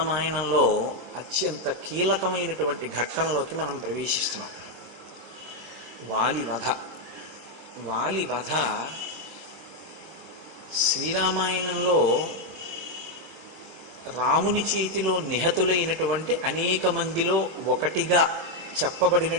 అత్యంత కీలకమైనటువంటి ఘట్టంలోకి మనం ప్రవేశిస్తున్నాం. వాలి వధ. వాలి వధ శ్రీరామాయణంలో రాముని చేతిలో నిహతులైనటువంటి అనేక మందిలో ఒకటిగా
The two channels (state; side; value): late; left; 24 ms